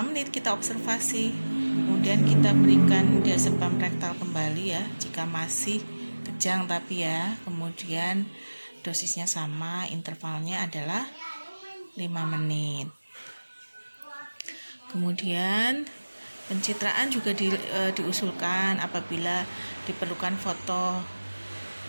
kita observasi, kemudian kita berikan diazepam rektal kembali ya, jika masih kejang tapi ya. Kemudian dosisnya sama, intervalnya adalah 5 menit. Kemudian pencitraan juga diusulkan apabila diperlukan foto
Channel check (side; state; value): both; inverted; correlation -1.00